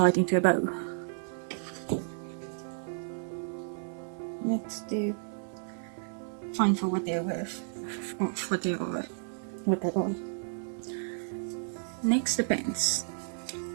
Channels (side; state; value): left; silent; 56 dB below the other